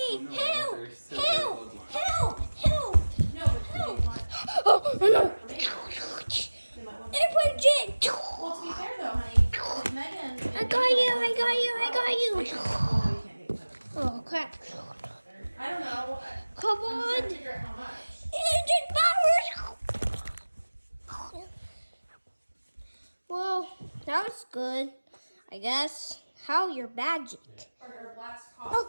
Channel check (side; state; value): both; inverted; correlation -1.00